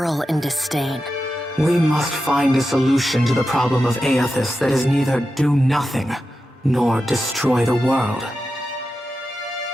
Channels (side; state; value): both; normal; correlation 0.91